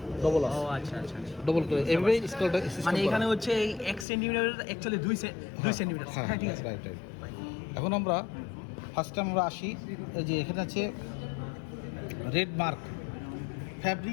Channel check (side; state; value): right; drops out; at 4.0 s